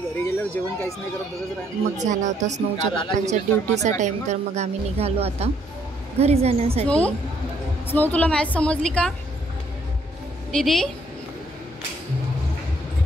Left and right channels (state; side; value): normal; both; correlation 0.68